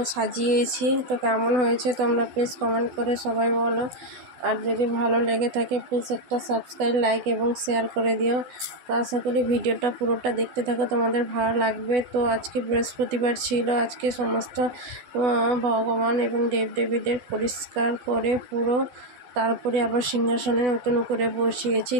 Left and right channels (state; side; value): late; left; 12 ms